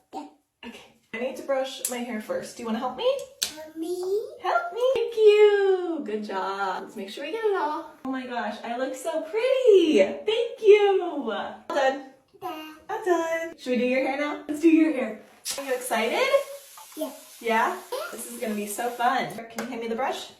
Yeah. Okay. I need to brush my hair first. Do you want to help me? Help me. Help me. Thank you. Good job. Let's make sure we get it all. Oh my gosh, I look so pretty. Thank you. All done. Dad. I'm done. Should we do your hair now? Let's do your hair. Are you excited? Yeah. Yeah? This is going to be so fun. Can you hand me the brush?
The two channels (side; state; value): both; identical; correlation 1.00